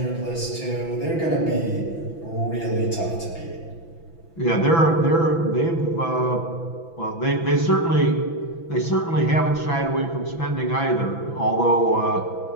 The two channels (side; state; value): right; late; 6.0 ms